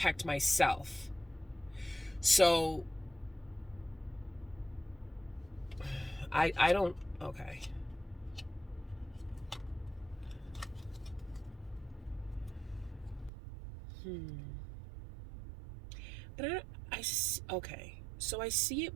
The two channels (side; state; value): left; drops out; at 13.3 s